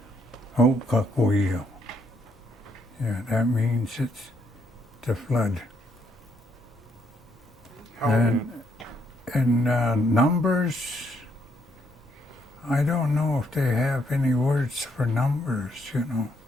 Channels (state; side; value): normal; both; correlation 0.73